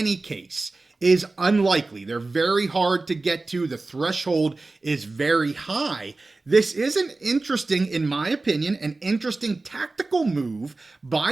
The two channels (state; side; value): quieter; left; 3.4 dB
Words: case is unlikely, they're very hard to get to, the threshold is very high, this is an interesting, in my opinion, an interesting tactical move